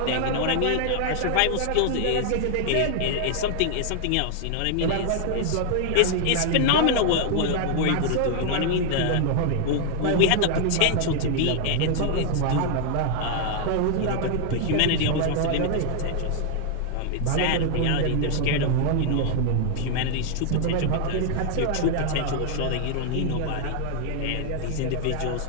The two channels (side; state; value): both; different; correlation 0.00